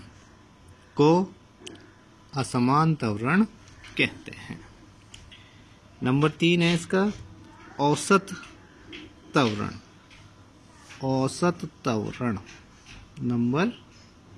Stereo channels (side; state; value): both; identical; correlation 1.00